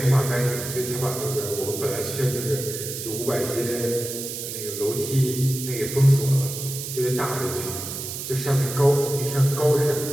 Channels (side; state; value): right; noise; hiss, 7 dB below the sound